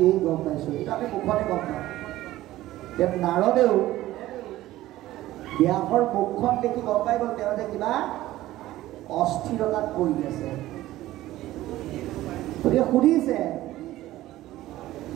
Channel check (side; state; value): left; quieter; 15.6 dB